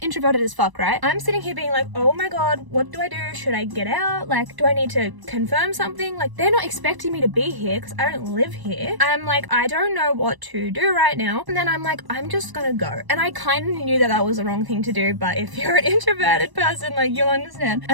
introverted as fuck, right? I'm sitting here being like, oh my God, what do I do? Should I get out? Do I need to confirm something? They're not expecting me to be here because I don't live here. I'm like, I don't know what to do right now. And then I'm like, I'm just gonna go. And I kind of knew that that was the wrong thing to do, but if you're an introverted person, you'll understand.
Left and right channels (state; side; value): late; left; 1.0 ms